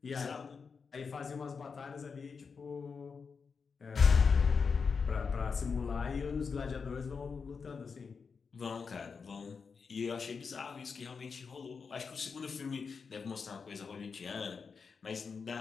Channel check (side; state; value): right; quieter; 5.4 dB